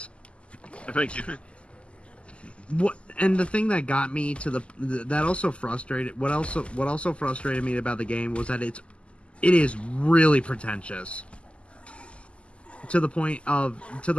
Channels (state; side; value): late; right; 0.055 ms